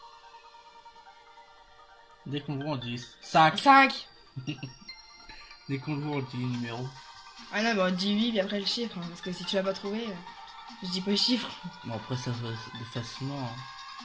Dès qu'on le voit, on dit 5. 5. Dès qu'on le voit, on dit le numéro. Ah non, mais on dit 8, puis après le chiffre, hein, parce que si tu l'as pas trouvé, je dis pas le chiffre. Bon, après, ça se voit facilement. Hein.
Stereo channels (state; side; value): identical; both; correlation 1.00